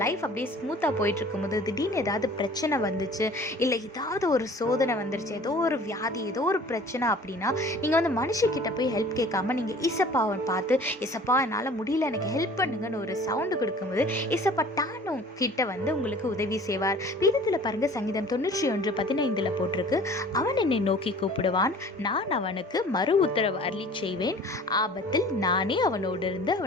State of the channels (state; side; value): normal; both; correlation 0.47